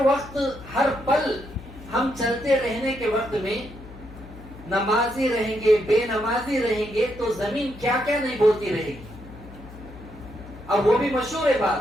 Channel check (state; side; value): noise; left; hum, 17 dB below the sound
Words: وقت، ہر پل ہم چلتے رہنے کے وقت میں نمازی رہیں گے، بے نمازی رہیں گے تو زمین کیا کیا نہیں بولتی رہے گی۔ اب وہ بھی مشہور ہے